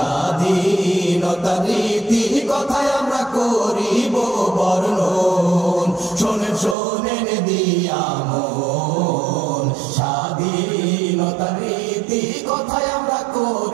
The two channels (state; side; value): drops out; left; at 6.8 s